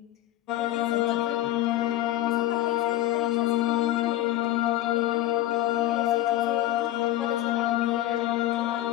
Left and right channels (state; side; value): quieter; right; 14.6 dB